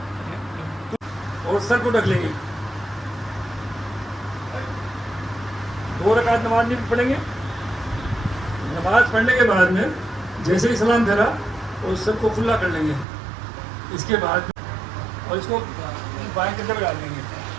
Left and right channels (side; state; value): left; drops out; at 13.1 s